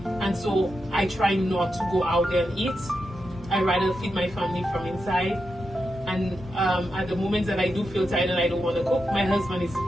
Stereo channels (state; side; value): normal; both; correlation 0.87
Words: and so I try not to go out there and eat. I rather feed my family from inside. And at the moments that I do feel tired and I don't want to cook, my husband is